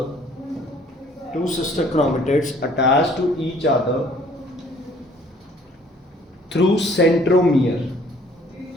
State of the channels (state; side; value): normal; both; correlation 0.57